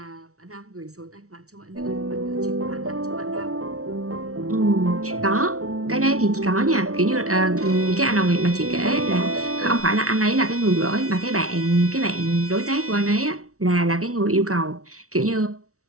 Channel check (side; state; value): left; late; 0.64 ms